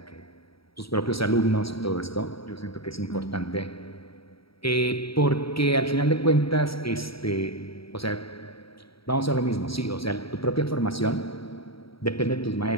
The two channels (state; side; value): late; right; 0.75 ms